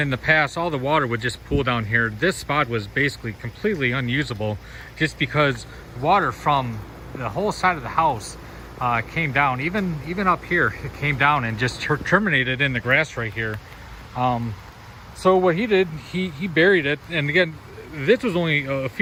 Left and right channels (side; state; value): both; identical; correlation 1.00